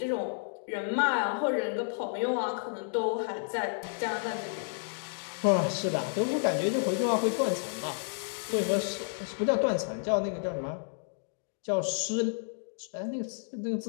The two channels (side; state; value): right; silent; digital silence